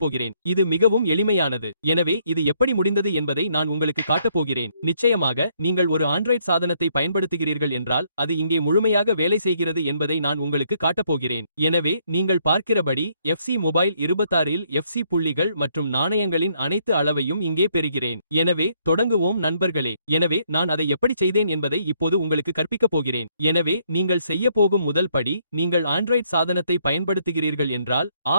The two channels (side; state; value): both; inverted; correlation -0.70